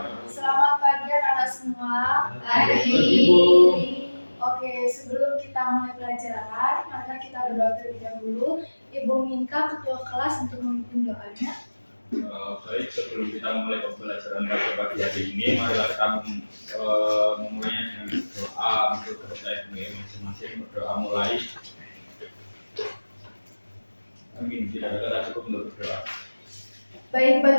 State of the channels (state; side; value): inverted; both; correlation -1.00